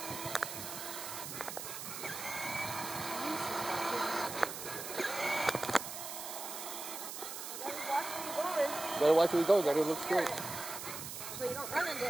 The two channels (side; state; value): right; noise; hiss, 7 dB below the sound